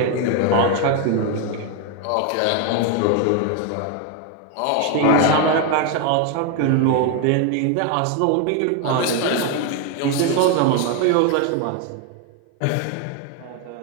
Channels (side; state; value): both; different; correlation 0.01